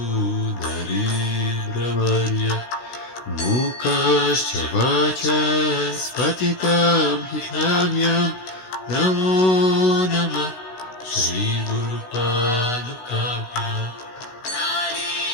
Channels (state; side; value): late; right; 16 ms